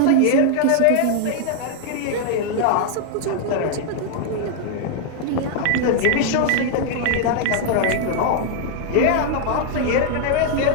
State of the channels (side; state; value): both; different; correlation -0.01